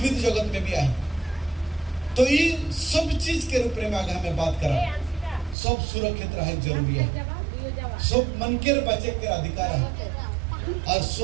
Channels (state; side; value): drops out; left; at 5.6 s